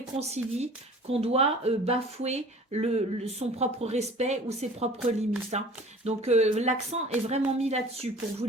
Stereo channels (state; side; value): normal; both; correlation 0.46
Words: qu'on doit bafouer son propre respect ou ses propres limites. Hein. Donc l'accent est vraiment mis là-dessus pour vous